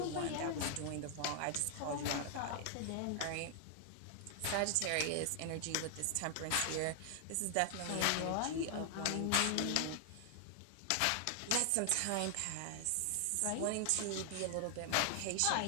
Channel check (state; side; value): different; both; correlation 0.00